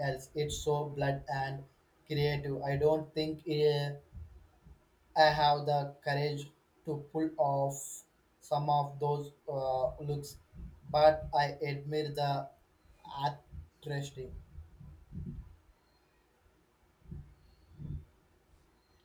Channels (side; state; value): both; identical; correlation 1.00